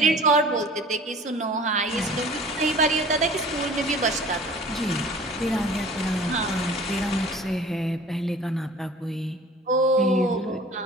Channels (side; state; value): both; normal; correlation 0.45